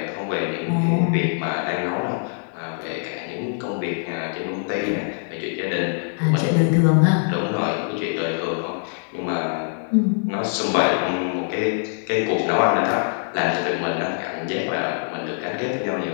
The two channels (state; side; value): silent; right; digital silence